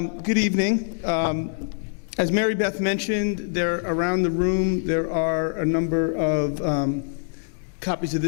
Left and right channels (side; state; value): right; silent; digital silence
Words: Good evening. As Mary Beth mentioned, around the room there are a number of copies of